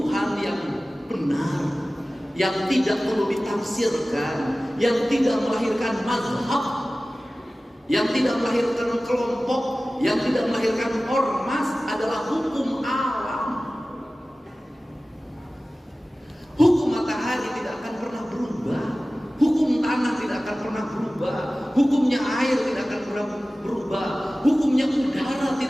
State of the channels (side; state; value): both; normal; correlation 0.97